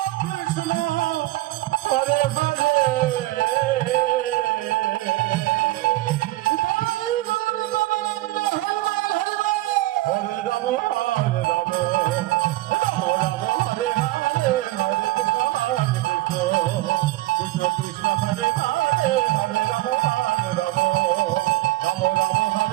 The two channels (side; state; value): left; quieter; 17.6 dB